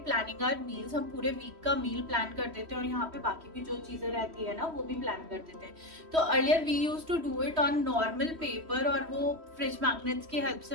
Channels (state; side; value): late; left; 3.1 ms